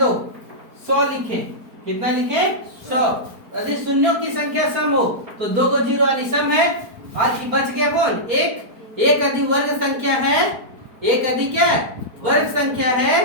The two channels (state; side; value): late; left; 4.5 ms